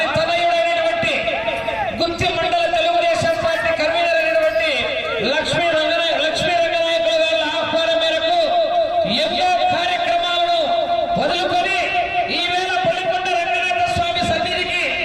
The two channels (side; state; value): both; identical; correlation 1.00